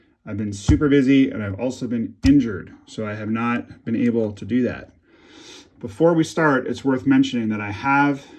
I've been super busy and I've also been injured, so I have not been able to do that. Before we start, it's worth mentioning that I have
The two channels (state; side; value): identical; both; correlation 1.00